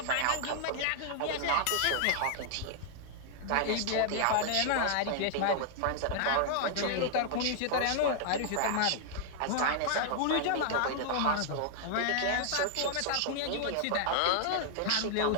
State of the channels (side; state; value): both; different; correlation -0.01